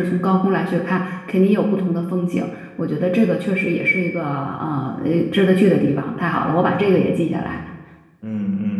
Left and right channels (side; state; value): both; identical; correlation 1.00